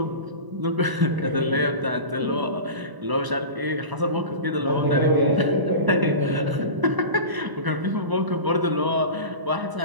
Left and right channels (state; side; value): late; left; 1.0 ms